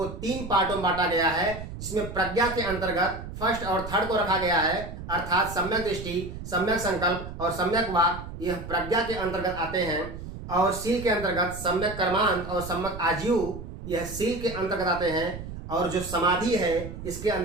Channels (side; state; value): right; noise; rumble, 10 dB below the sound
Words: 3 पार्टों में बांटा गया है, जिसमें प्रज्ञा के अंतर्गत फर्स्ट और थर्ड को रखा गया है, अर्थात सम्यक दृष्टि, सम्यक संकल्प और सम्यक वाक, यह प्रज्ञा के अंतर्गत आते हैं। और सील के अंतर्गत सम्यक कर्मांत और सम्यक आजीव, यह सील के अंतर्गत आते हैं। और जो समाधि है इसके